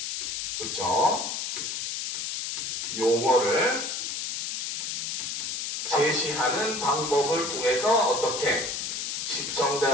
그쵸? 용어를 제시하는 방법을 통해서 어떻게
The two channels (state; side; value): noise; left; hiss, 3 dB below the sound